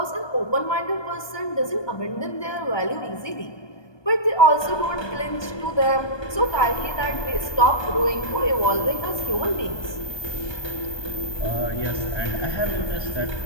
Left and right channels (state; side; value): late; right; 1.2 ms